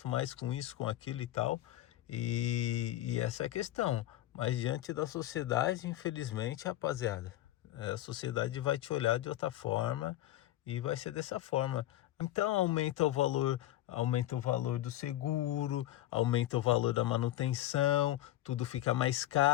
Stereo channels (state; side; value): quieter; right; 14.5 dB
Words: mais com isso, com aquilo e tal. E essa é a questão. Mas diante da sociedade, infelizmente, rapaziada, a sociedade vai te olhar de outra forma e vai ser dessa forma. Então aumenta o valor do seguro, aumenta o valor da manutenção, tudo fica mais